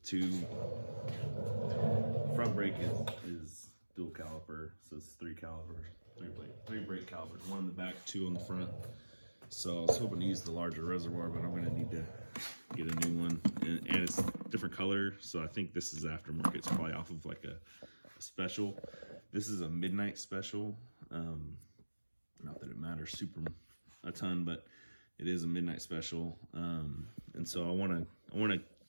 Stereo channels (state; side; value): inverted; both; correlation -1.00